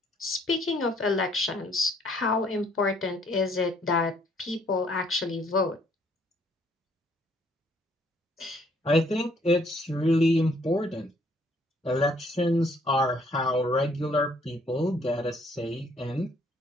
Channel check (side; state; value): both; normal; correlation 0.65